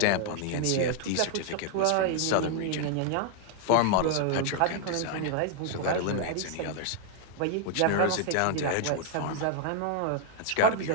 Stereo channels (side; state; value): both; different; correlation 0.00